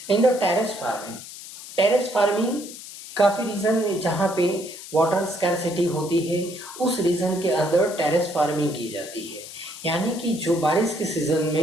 इन द टेरेस फार्मिंग काफ़ी रीजन जहाँ पे वाटर स्कैरसिटी होती है उस रीजन के अंदर टेरेस फार्मिंग की जाती है। यानी कि जो बारिश के सीजन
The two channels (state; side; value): noise; left; hiss, 13 dB below the sound